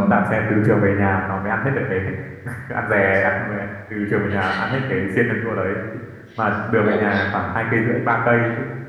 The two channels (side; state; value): both; identical; correlation 1.00